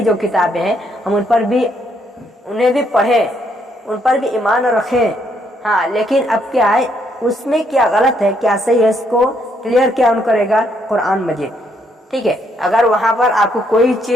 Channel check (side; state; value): both; normal; correlation 0.72